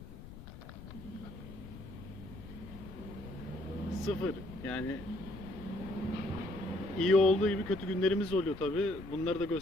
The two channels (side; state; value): left; noise; rumble, 13 dB below the sound